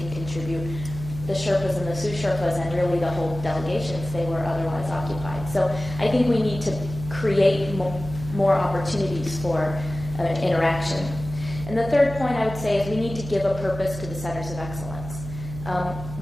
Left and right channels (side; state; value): right; noise; hum, 10 dB below the sound